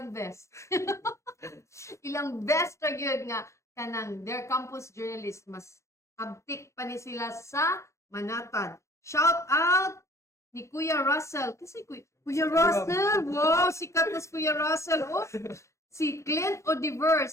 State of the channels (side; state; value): right; late; 0.14 ms